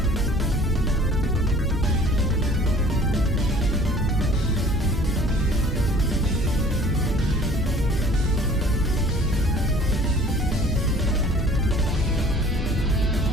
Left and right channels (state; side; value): normal; both; correlation 0.51